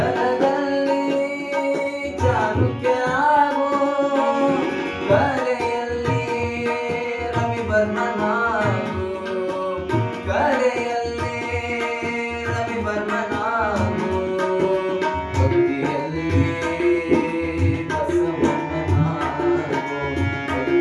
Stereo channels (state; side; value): identical; both; correlation 1.00